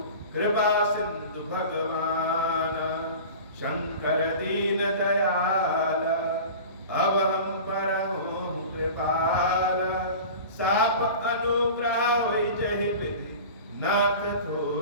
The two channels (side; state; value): both; inverted; correlation -0.36